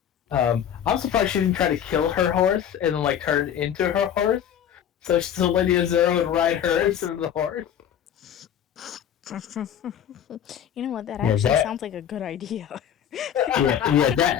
I'm surprised she didn't try to kill her horse and then like turn into her horse, so Lady Ezra would ride her instead of the horse. You know what? That Yeah, actually that- sounds like a good idea.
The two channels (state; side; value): quieter; right; 9.4 dB